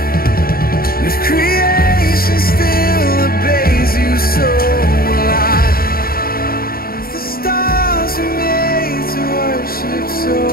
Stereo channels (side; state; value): right; late; 0.43 ms